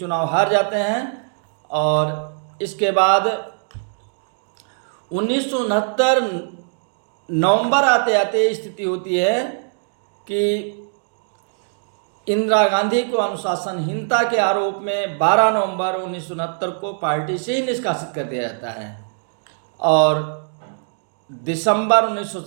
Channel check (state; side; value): silent; left; digital silence